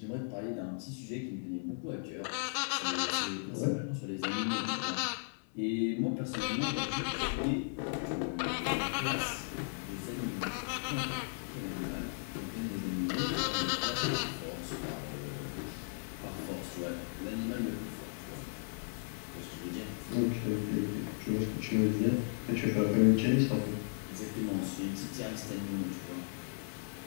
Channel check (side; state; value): right; silent; 54 dB below the other